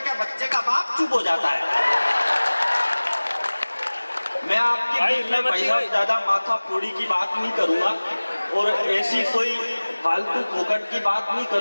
बच्चे का बाप चुप हो जाता है। मैं आपके बीच में भाई साहब ज्यादा माथा फोड़ी की बात नहीं करूंगा और ऐसी कोई फालतू फोकट की बात नहीं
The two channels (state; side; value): inverted; both; correlation -1.00